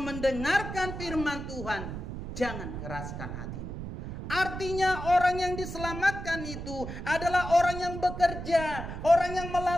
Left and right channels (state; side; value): noise; right; rumble, 7 dB below the sound